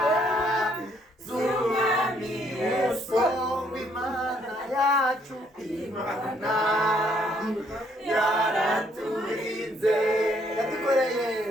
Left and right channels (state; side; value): normal; both; correlation 0.68